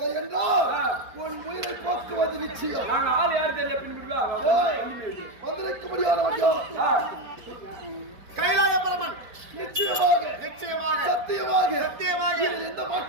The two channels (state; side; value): late; left; 4.6 ms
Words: என்றால் உன் உயிரை போக்குவது நிச்சயம். நாங்க ஆள் யாரு தெரியல பின்புடுவா வந்திருக்க முடியாதவன் கைலாய பரமன் நிச்சயமாக சத்தியமாக எந்த